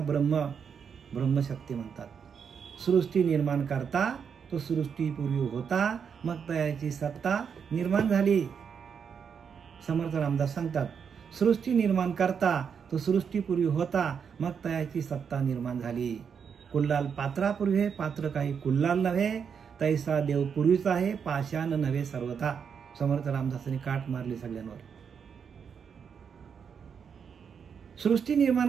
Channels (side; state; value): left; quieter; 6.9 dB